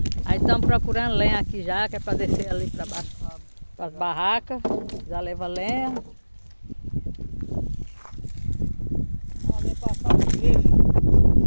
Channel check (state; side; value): inverted; both; correlation -1.00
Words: Aí estamos procurando lenha aqui já, que é para descer ali para baixo, para as barracas. Já leva lenha. Ali passar o trecho.